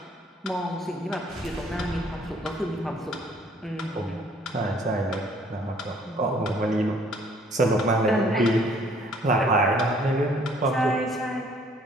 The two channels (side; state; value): both; normal; correlation 0.60